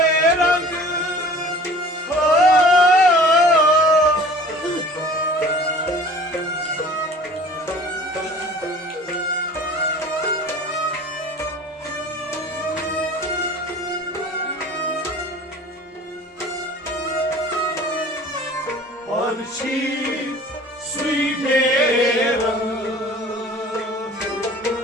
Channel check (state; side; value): normal; both; correlation 0.46